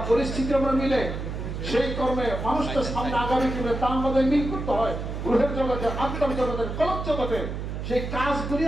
পরিস্থিতি আমরা মিলাই, সেই কর্মে মানুষটা সামনে আগামী দিনে তা আমাদের মিল করতে হয়। রূহের জগতে, আত্মার জগতে, কলব জগতে সেই কাজগুলি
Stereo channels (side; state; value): right; noise; hum, 5 dB below the sound